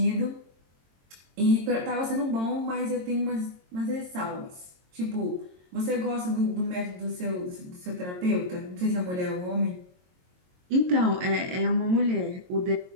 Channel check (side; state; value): left; late; 22 ms